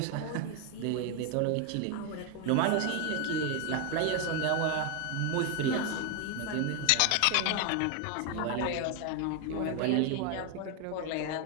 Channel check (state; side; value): different; both; correlation 0.01